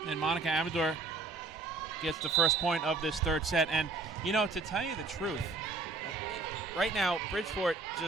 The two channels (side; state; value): left; quieter; 3.7 dB